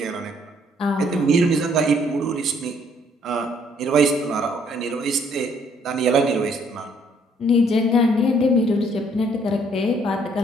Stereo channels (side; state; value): both; normal; correlation 0.65